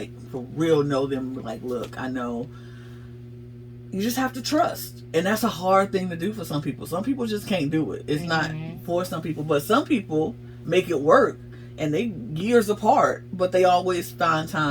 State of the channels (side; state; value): both; identical; correlation 1.00